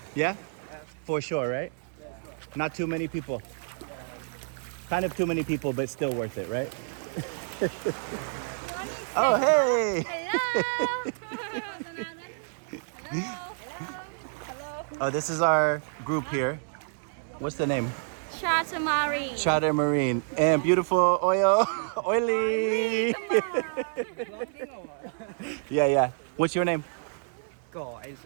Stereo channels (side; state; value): left; silent; 59 dB below the other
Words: Yeah? For sure, right? Not too many people. Kind of too many people, but still worth it, right? Oh, hey! Hello. Oh, this is our group here. What's the name? Charter Marine. Charter Marine. And beautiful oil. Oily. Yeah. What's your name? Go is